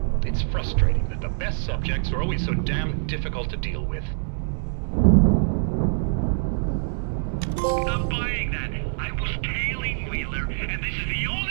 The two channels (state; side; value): silent; left; digital silence